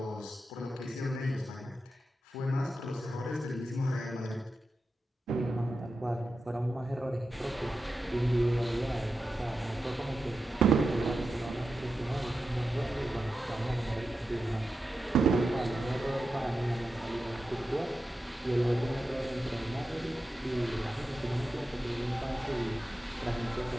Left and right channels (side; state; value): both; normal; correlation 0.90